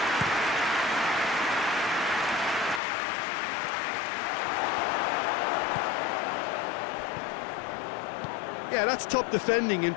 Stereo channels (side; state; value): right; drops out; at 2.8 s